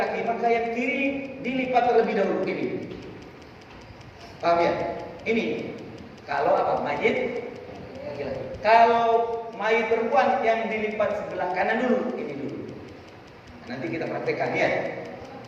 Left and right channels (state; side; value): identical; both; correlation 1.00